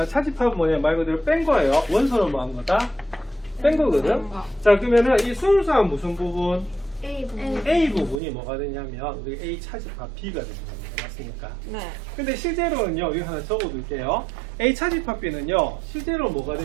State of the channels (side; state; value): left; drops out; at 8.2 s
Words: 차집합은 뭐냐 말 그대로 뺀 거예요. 원소는 뭐 한 거다? 뺀 거거든. 자, 그러면은 이 순수한 무슨 부분? A 부분이 뭐가 되냐면 우리 A 차집합 B가 되는 겁니다. 맞습니까? 네. 근데 실제로는요, 여기 하나 적어둘게요. A 차집합 B는요, 실제로 뭐가